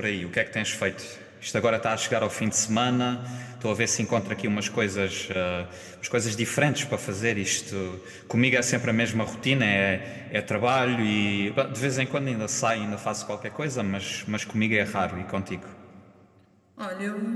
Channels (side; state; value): both; identical; correlation 1.00